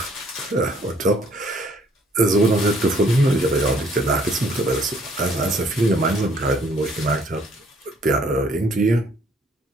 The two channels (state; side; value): normal; both; correlation 0.63